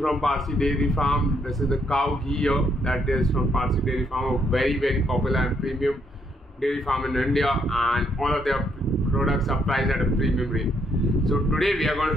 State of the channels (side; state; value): both; normal; correlation 0.73